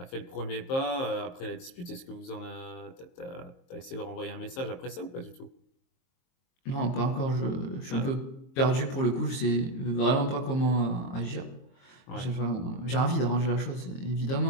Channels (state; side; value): late; right; 23 ms